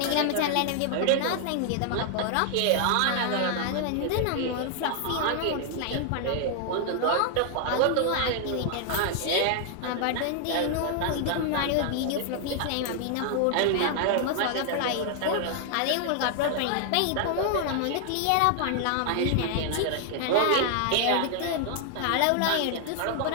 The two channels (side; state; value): both; different; correlation 0.00